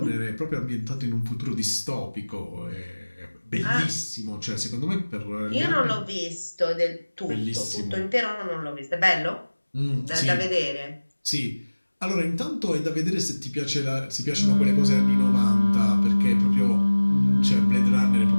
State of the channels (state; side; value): inverted; both; correlation -1.00